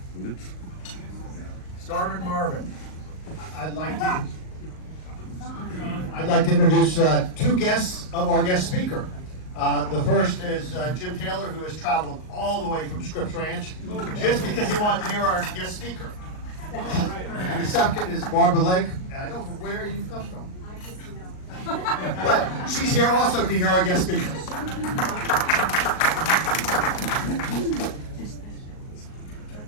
Starvin Marvin. I'd like to introduce two guests of our guest speaker. The first is Jim Taylor, who has traveled all the way from Scripps Ranch just because he wanted to hear our guest speaker. And the second is Barbara Lake, and I don't know where you've come from. But she's here also to hear our guest speakers.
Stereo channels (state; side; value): late; right; 38 ms